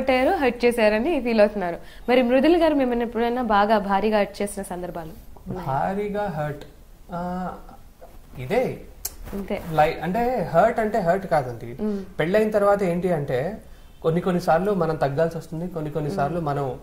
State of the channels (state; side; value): identical; both; correlation 1.00